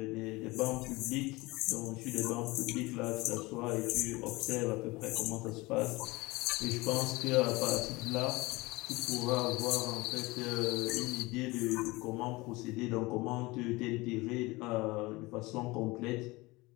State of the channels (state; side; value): quieter; right; 22.3 dB